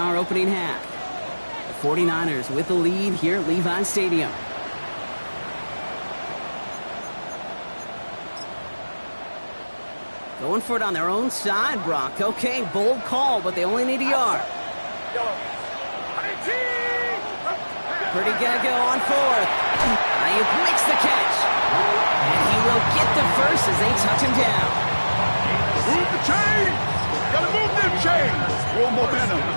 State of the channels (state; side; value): inverted; both; correlation -1.00